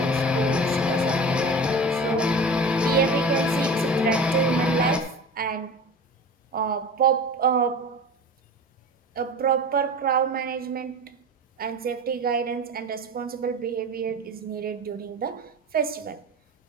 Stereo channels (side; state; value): both; normal; correlation 0.34